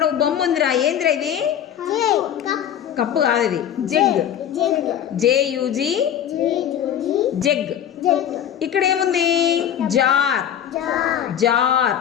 ఒక బొమ్మ ఉందిరా, ఏందిరా ఇది? కప్పు కాదు, ఇది జగ్. జేయుజి జగ్. ఇక్కడ ఏముంది? జార్. జార్.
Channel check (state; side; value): quieter; right; 9.8 dB